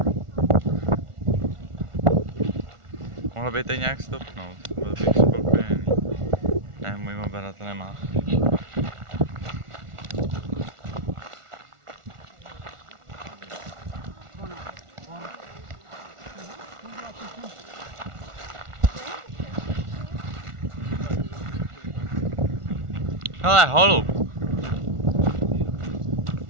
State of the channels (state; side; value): late; left; 1.4 ms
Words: Mohlo by to nějak stopnout, byl bych spokojený. Ne, můj mobil to nemá. Hele, holub.